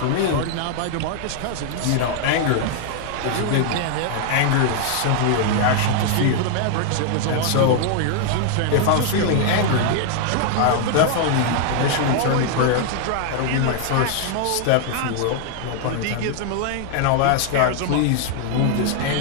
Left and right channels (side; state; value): both; different; correlation 0.00